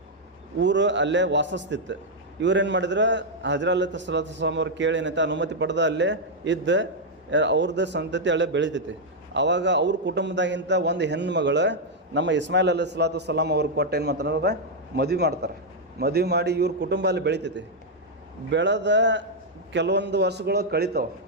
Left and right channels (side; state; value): both; normal; correlation -0.02